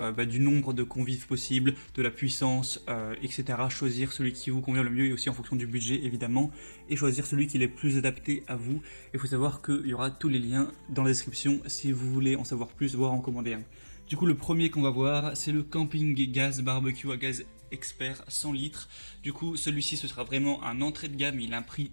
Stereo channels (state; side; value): inverted; both; correlation -1.00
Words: du nombre de convives possible, de la puissance, etc. Choisir celui qui vous convient le mieux et aussi en fonction du budget, évidemment. Et choisir celui qui est le plus adapté à vous. Il faut savoir qu'il y aura tous les liens dans la description si vous voulez en savoir plus, voire en commander un. Du coup, le premier qu'on va voir, c'est le Camping Gas Barbecue à gaz expert 100 litres. Du coup, celui-ci, ce sera vraiment un entrée de gamme. Il a un prix